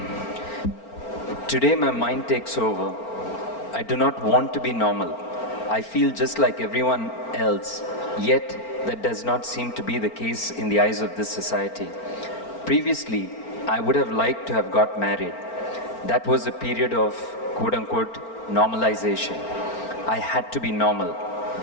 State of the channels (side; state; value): right; late; 4.4 ms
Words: Today my mind takes over. I do not want to be normal. I feel just like everyone else, yet that does not seem to be the case in the eyes of this society. Previously, I would have liked to have got married. That was a period of quote-unquote normalization. I had to be normal.